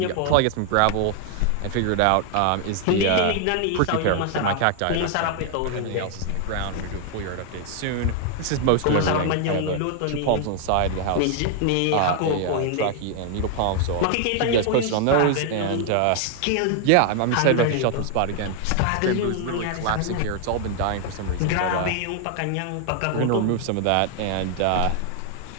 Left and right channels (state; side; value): different; both; correlation 0.00